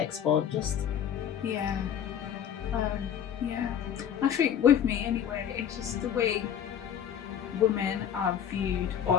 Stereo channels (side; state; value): right; quieter; 9.0 dB